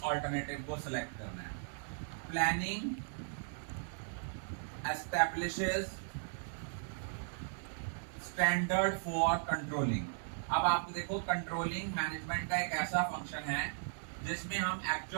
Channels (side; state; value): left; silent; digital silence